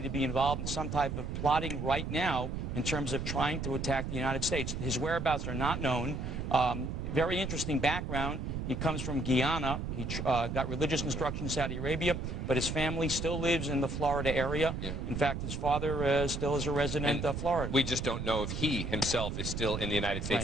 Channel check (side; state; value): right; noise; rumble, 4 dB below the sound